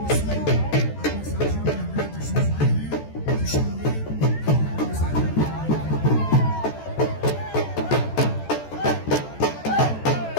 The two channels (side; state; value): right; late; 14 ms